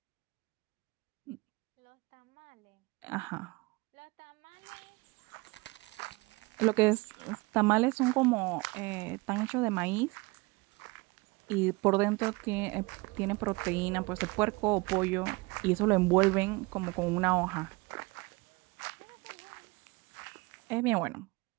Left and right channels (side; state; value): left; quieter; 24.6 dB